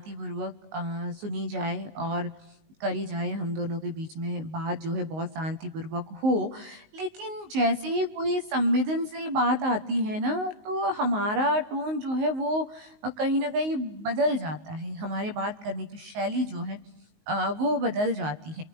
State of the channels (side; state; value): left; late; 19 ms